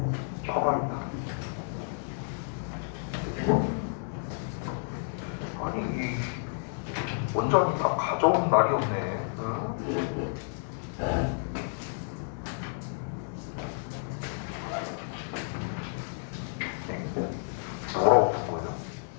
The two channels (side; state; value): right; silent; digital silence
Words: 봐봐야겠다. 아니, 원전이 다 가져온 날이 없네. 뭐라고 쓴 거예요?